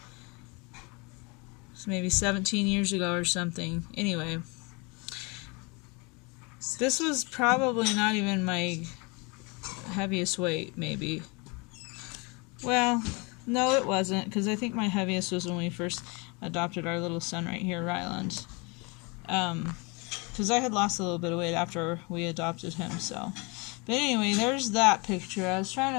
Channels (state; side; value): quieter; right; 29.4 dB